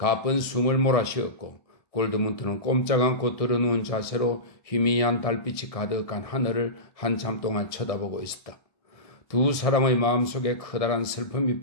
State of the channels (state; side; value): late; right; 1.6 ms